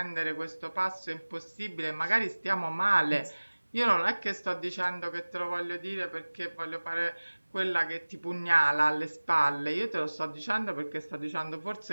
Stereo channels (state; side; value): inverted; both; correlation -1.00